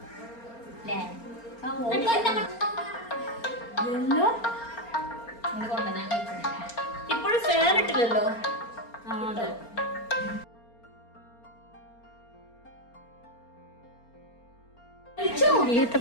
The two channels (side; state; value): right; late; 4.3 ms